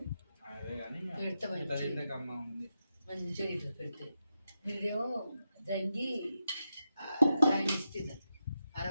అదే కానీ పెడతా తింటే అమ్మ ఉంది మంచిగా ఇట్లా పెడితే మీరేమో దంగి ఆయన ఇస్తున్నారు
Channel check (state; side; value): inverted; both; correlation -0.87